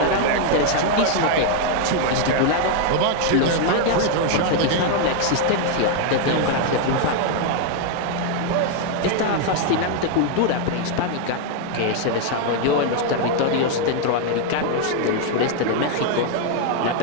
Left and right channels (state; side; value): different; both; correlation 0.00